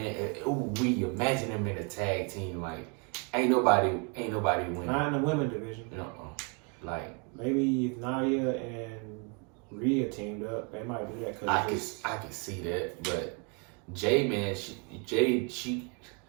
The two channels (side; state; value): left; quieter; 34.9 dB